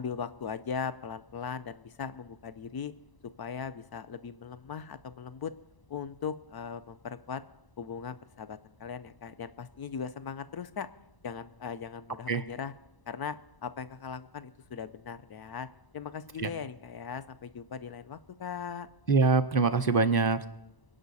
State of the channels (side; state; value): right; late; 1.0 ms